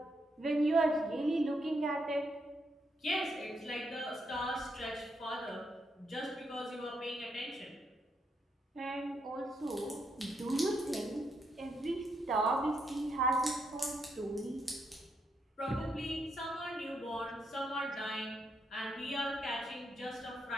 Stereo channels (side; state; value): both; normal; correlation 0.79